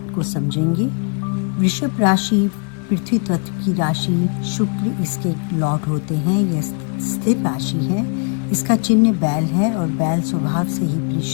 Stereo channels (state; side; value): quieter; right; 37.6 dB